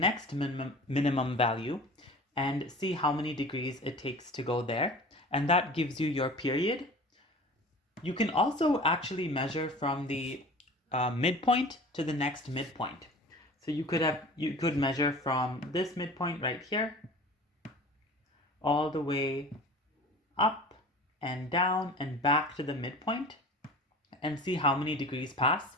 minimum value and see how many degrees it takes to go there. And that gives you your period. You can also actually measure from the midpoint to the next midpoint. So you could measure from this midpoint right here all the way up and down and back to the midpoint and see how many degrees pass.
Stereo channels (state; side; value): normal; both; correlation 0.40